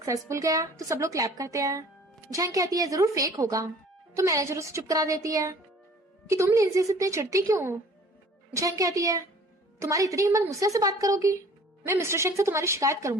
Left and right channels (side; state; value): both; normal; correlation 0.50